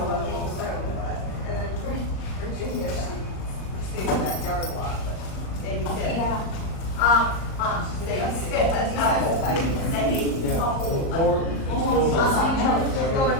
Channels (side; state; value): right; late; 38 ms